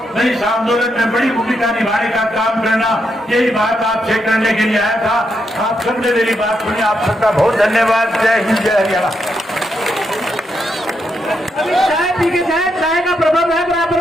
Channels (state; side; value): normal; both; correlation 0.81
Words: मैं इस आंदोलन में बड़ी भूमिका निभाने का काम करना, यही बात आपसे करने के लिए आया था। आप सबने मेरी बात सुनी, आप सबका बहुत धन्यवाद। जय हिंद, जय हरियाणा। अभी चाय पी के जाए, चाय का प्रबंध है